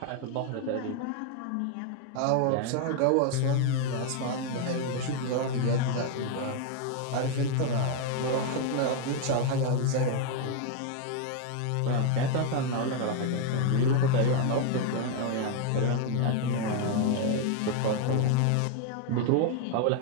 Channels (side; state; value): both; different; correlation 0.00